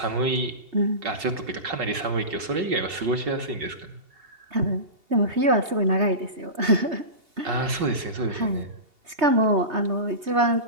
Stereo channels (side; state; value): left; late; 2.7 ms